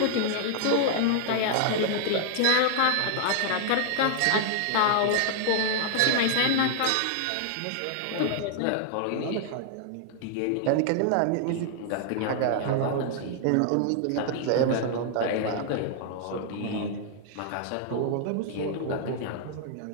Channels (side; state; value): both; different; correlation -0.01